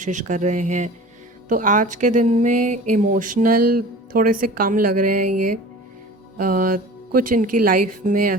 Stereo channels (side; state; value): both; normal; correlation 0.40